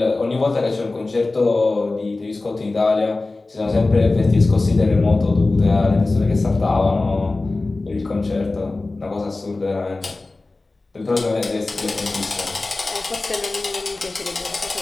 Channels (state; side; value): quieter; right; 3.3 dB